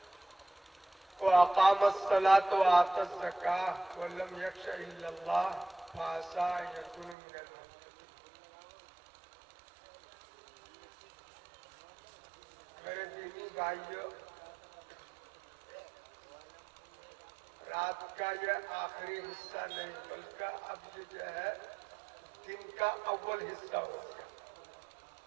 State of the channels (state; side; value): drops out; left; at 7.2 s